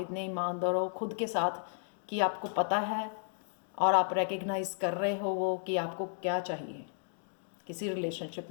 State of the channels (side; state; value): right; silent; digital silence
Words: ईमानदार हो खुद के साथ कि आपको पता है और आप रिकग्नाइज कर रहे हो वो कि आपको क्या चाहिए किसी रिलेशनशिप